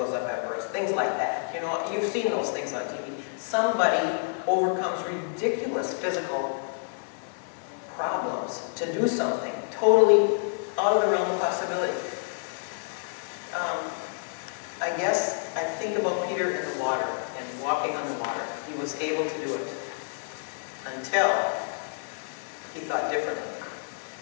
up Everest. Things like that. You know, you've seen those things on TV. somebody overcomes ridiculous physical problems to do something totally out of the realm of possibility. I guess I think about Peter in the water and walking on the water. He was able to do it until he thought differently,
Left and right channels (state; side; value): silent; right; digital silence